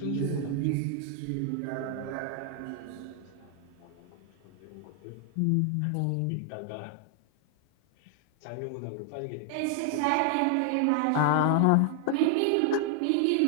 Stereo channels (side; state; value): both; different; correlation 0.00